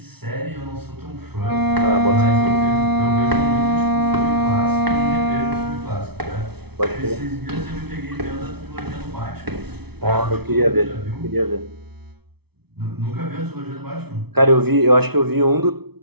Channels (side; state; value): left; late; 0.98 ms